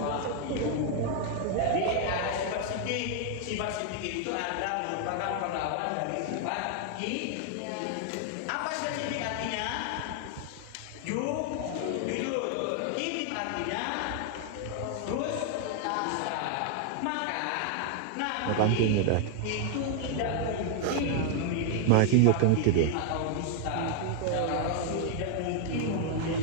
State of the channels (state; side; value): different; both; correlation 0.00